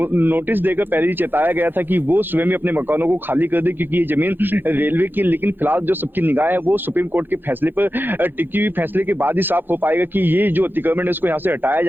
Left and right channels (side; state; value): left; late; 0.097 ms